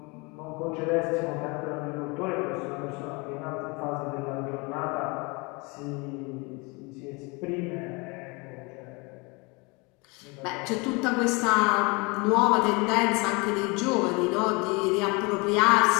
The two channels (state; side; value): quieter; right; 28.1 dB